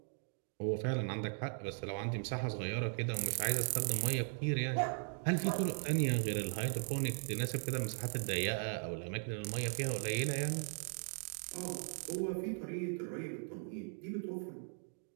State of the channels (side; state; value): left; silent; 52 dB below the other